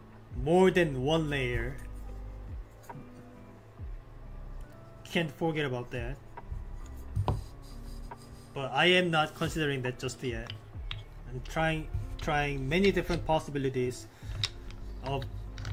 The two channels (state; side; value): identical; both; correlation 1.00